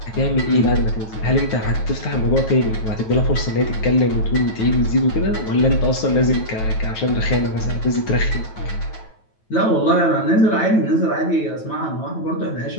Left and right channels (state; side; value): late; right; 9.2 ms